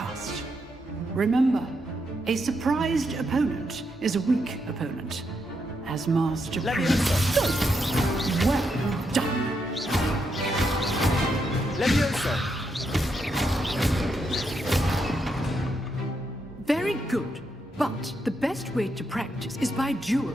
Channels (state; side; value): normal; both; correlation 0.81